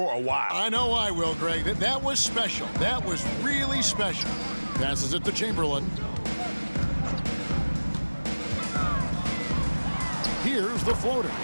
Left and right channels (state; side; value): inverted; both; correlation -1.00